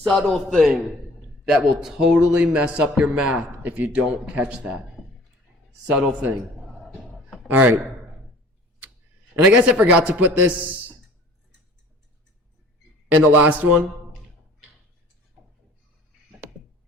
thing that will totally mess up your math if you don't catch that. Subtle thing. All right. And I guess I forgot to put this in the last one.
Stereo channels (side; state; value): both; normal; correlation 0.49